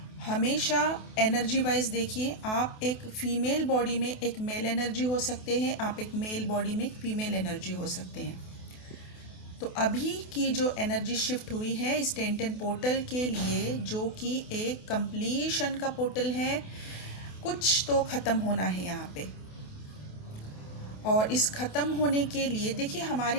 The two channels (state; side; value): late; right; 28 ms